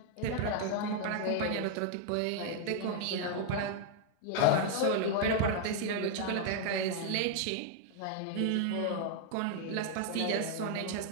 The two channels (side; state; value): both; different; correlation 0.00